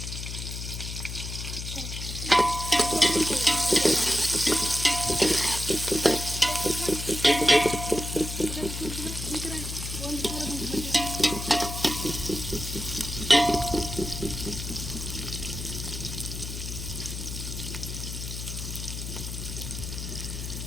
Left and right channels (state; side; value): noise; left; hum, 7 dB below the sound